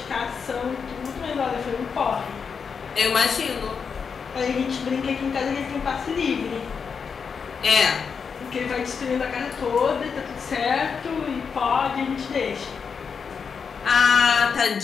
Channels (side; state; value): right; quieter; 6.0 dB